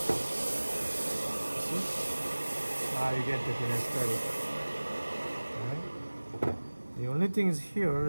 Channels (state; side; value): inverted; both; correlation -1.00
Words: You get the aesthetic. Right? The only thing is here